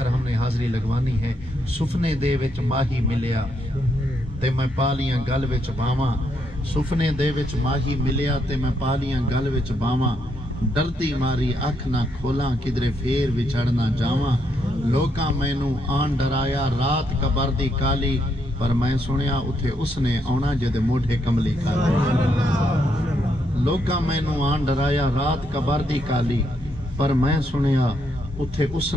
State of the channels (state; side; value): normal; both; correlation 0.77